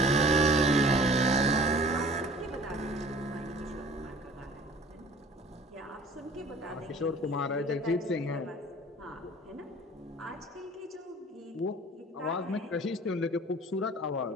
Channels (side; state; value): both; normal; correlation 0.46